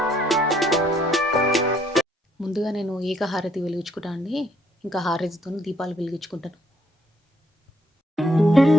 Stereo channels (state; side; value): normal; both; correlation 0.68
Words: ముందుగా నేను ఏకహారతి వెలిగించుకుంటాను అండి. ఇంకా హారతితో దీపాలు వెలిగించుకుంటాను.